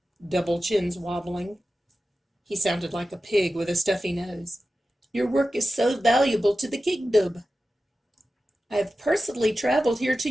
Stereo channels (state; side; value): normal; both; correlation 0.94